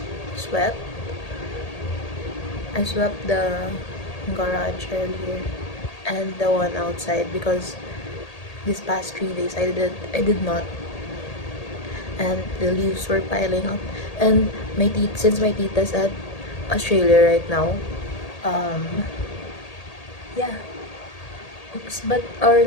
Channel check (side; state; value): right; late; 1.8 ms